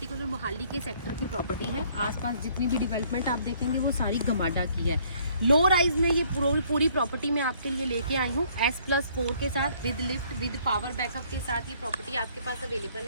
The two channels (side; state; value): both; inverted; correlation -0.62